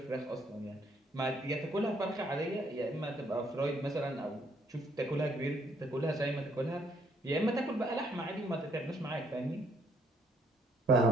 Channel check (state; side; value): normal; both; correlation 0.68